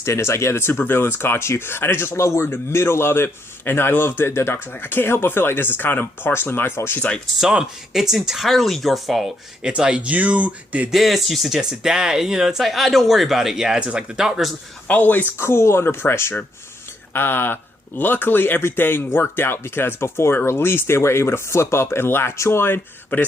It's the supervillains caught you. And I just love we're in the middle of it. And I love that the doctor's I can't help but feel like this is kind of partially my fault. She's like, it's entirely your fault. It's you did this, you suggested that. And, it's don't worry about it. Yeah, it's just the doctor's always cool under pressure. Luckily, everything worked out because before it released, they were able to flip up and latch on. But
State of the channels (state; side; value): normal; both; correlation 0.76